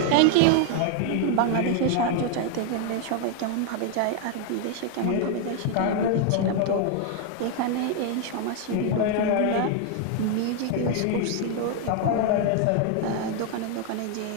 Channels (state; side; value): different; both; correlation 0.00